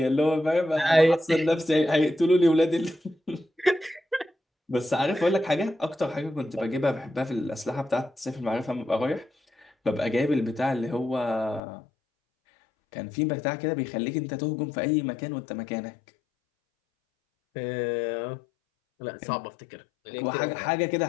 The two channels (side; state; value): right; drops out; at 11.6 s